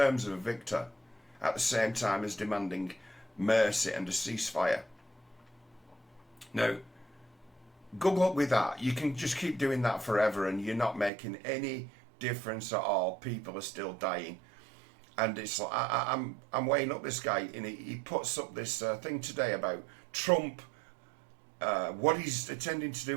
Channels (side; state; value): left; drops out; at 11.1 s